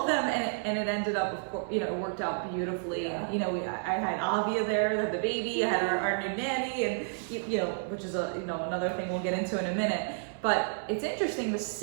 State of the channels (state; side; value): silent; left; 57 dB below the other